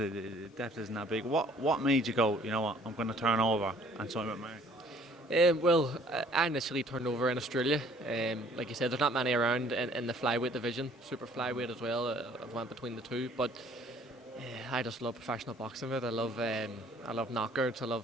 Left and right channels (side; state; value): both; normal; correlation 0.57